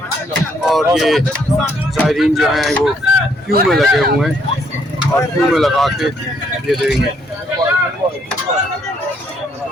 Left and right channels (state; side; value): normal; both; correlation 0.69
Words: और ये ज़ायरीन जो हैं वो क्यू में लगे हुए हैं, और क्यू में लगा के ये देंगे।